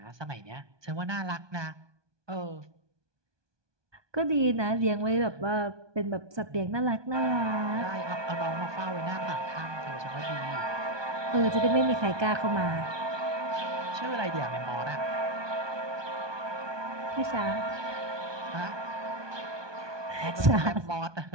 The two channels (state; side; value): late; left; 1.2 ms